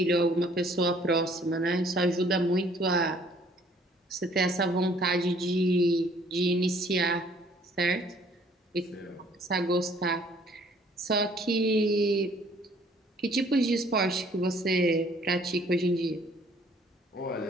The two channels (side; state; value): both; normal; correlation 0.59